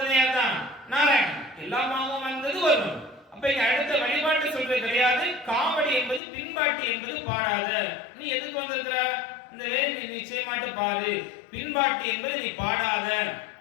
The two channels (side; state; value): right; drops out; at 6.2 s